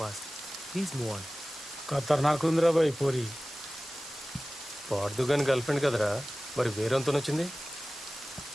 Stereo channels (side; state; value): both; normal; correlation 0.97